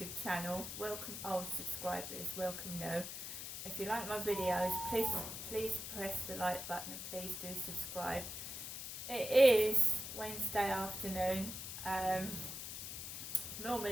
channel. Welcome old subscribers, welcome new. If you like my videos, please press the like button and please do subscribe. It is Wednesday afternoon.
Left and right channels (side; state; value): left; noise; hiss, 7 dB below the sound